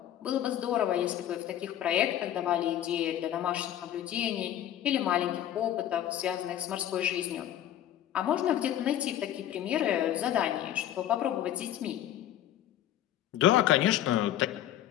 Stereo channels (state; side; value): quieter; right; 11.6 dB